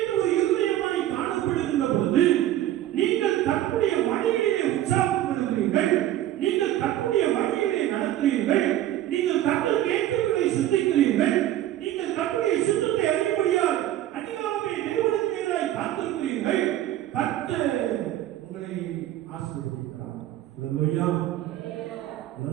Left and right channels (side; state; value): left; quieter; 13.2 dB